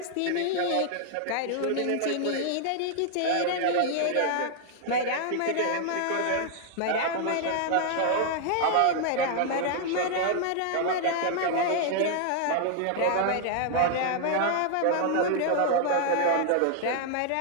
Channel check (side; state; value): both; different; correlation 0.00